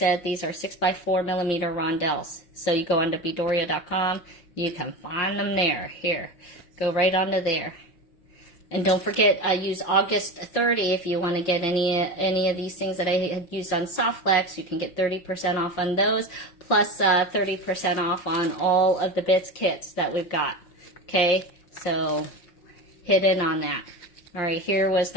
these are 6x4 millimeter rondelles. So you go onto Beadoria.com, you can find them there. Here, go right onto there. And don't forget, use August 30 if you want to get any of these things that I had used on Softflex. You can get 30% off on those, plus 30% off on all of the bits kits that we've got. Okay, so hit in on that. All right, here was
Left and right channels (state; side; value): late; right; 5.6 ms